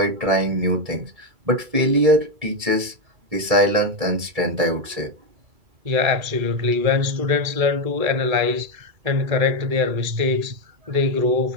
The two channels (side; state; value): left; late; 2.3 ms